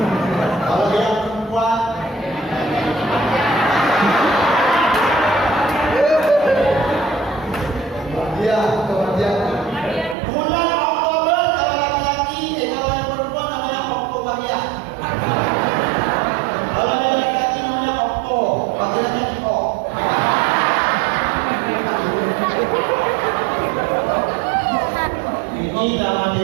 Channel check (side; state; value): left; drops out; at 10.2 s